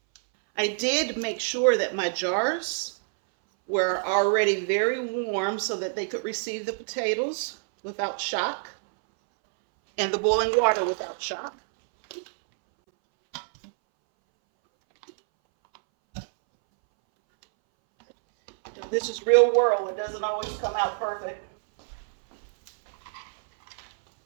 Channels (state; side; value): silent; left; 61 dB below the other